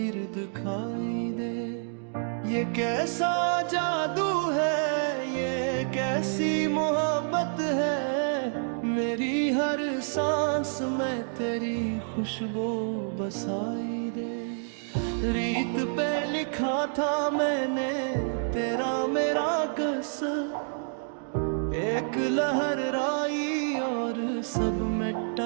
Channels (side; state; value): left; silent; digital silence